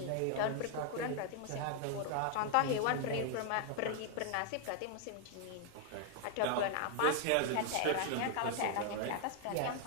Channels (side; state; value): both; different; correlation 0.00